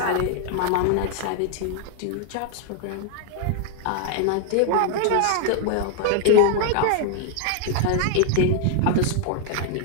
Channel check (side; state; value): both; different; correlation 0.00